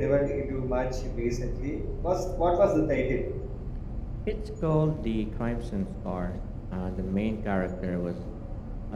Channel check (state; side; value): identical; both; correlation 1.00